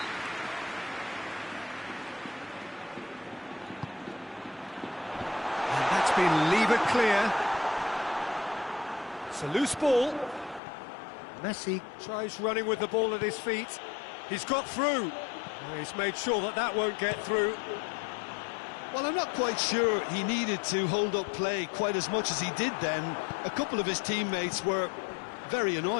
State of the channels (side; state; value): right; drops out; at 10.6 s